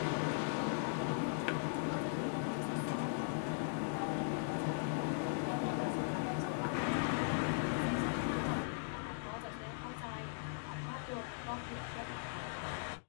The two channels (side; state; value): right; silent; digital silence